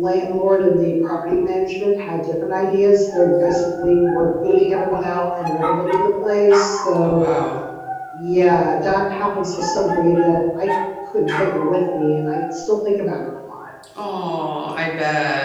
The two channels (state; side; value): identical; both; correlation 1.00